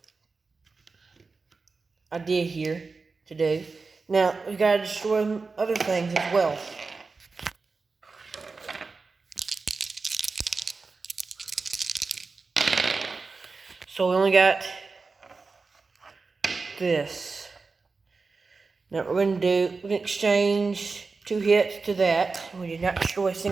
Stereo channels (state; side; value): quieter; left; 4.2 dB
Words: idea here to do. Now, we gotta destroy other things as well. So we only got this. Now we're gonna exchange 2 hits to that. We did not destroy a